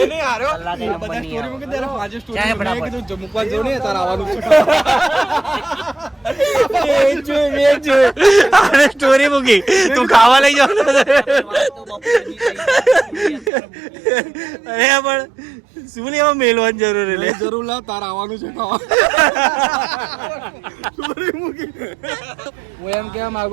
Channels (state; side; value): drops out; left; at 13.5 s